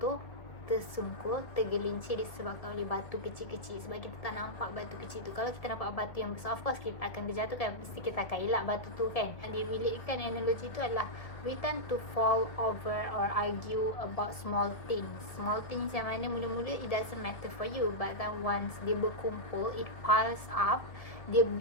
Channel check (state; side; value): late; right; 1.8 ms